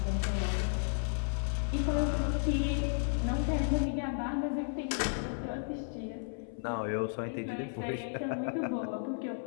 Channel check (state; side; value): silent; right; 55 dB below the other